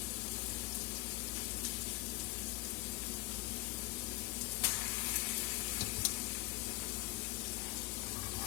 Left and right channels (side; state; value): right; quieter; 21.0 dB